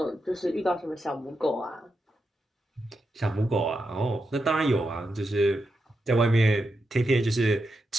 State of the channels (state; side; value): normal; both; correlation 0.86